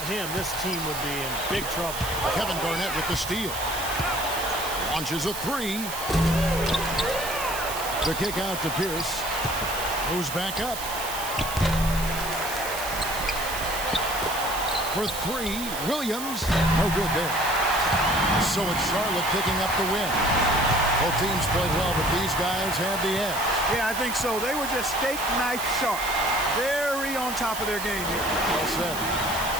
him, this team would be in big trouble. Kevin Garnett with the steal. Launches a three. The kick out to Pierce. Moves back up. For three, Williams. No good there. So it's Charlotte picking up the win. Both teams played well, but these guys had the edge. Yeah, I think so. They were just steak knife sharp. Very on top of their game here. Well said.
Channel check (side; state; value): right; noise; hiss, 8 dB below the sound